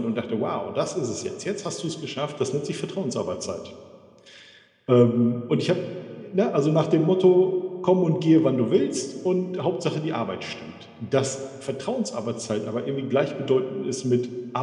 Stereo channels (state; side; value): identical; both; correlation 1.00